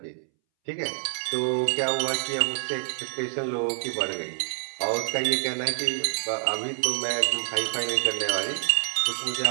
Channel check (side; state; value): left; silent; 60 dB below the other